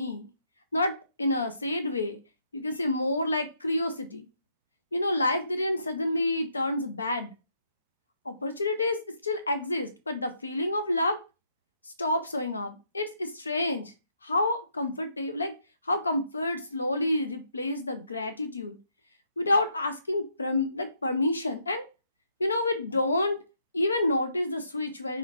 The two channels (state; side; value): inverted; both; correlation -0.75